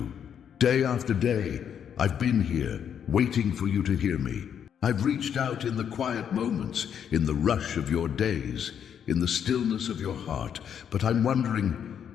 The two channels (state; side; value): quieter; right; 8.4 dB